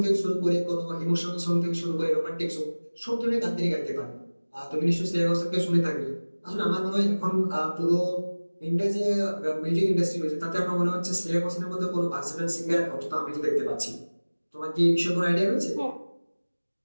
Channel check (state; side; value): inverted; both; correlation -1.00